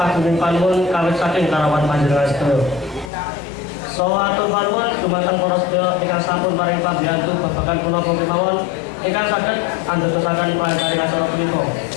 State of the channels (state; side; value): drops out; right; at 3.1 s